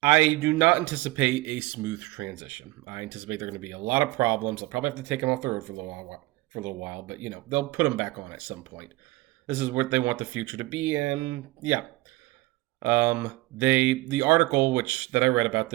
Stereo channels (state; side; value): quieter; left; 20.1 dB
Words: do not anticipate a smooth transition. I anticipate there are going to be a lot of problems. I'll probably have to take them off the road for a little while, but they'll put them back on at some point. This is what they want the future to be, and yeah, the article which that I read about